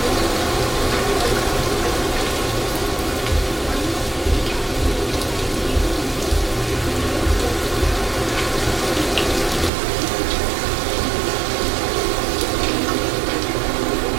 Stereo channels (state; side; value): drops out; left; at 9.7 s